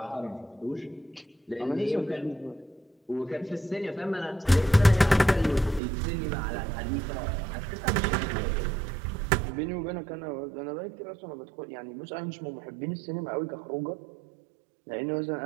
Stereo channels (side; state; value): left; drops out; at 5.8 s